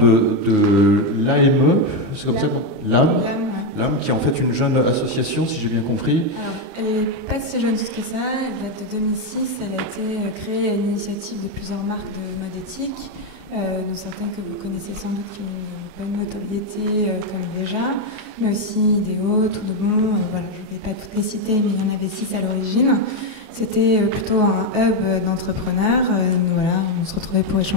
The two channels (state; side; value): late; left; 30 ms